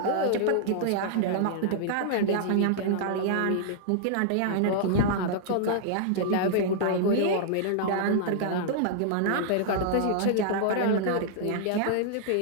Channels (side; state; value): both; different; correlation -0.01